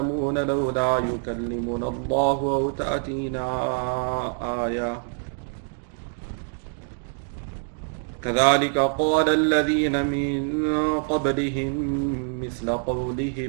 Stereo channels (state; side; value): silent; left; 62 dB below the other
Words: لولا يكلمنا الله أو تأتينا آية كذلك قال الذين من قبلهم مثل